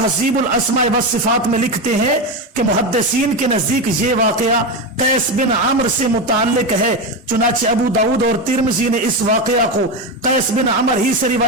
الاسماء والصفات میں لکھتے ہیں کہ محدثین کے نزدیک یہ واقعہ قیس بن عمرو سے متعلق ہے، چنانچہ ابو داؤد اور ترمذی نے اس واقعہ کو قیس بن عمرو ہی سے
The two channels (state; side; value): normal; both; correlation 0.14